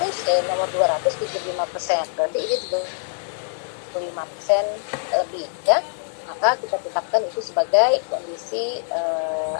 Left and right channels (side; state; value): right; silent; digital silence